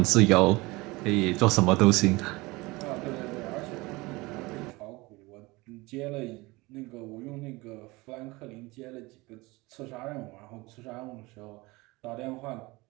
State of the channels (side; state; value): left; quieter; 22.7 dB